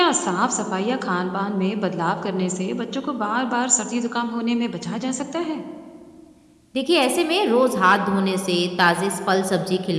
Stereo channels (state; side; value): identical; both; correlation 1.00